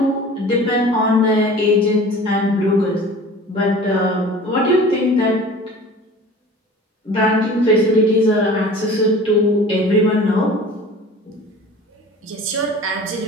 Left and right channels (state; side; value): normal; both; correlation 0.42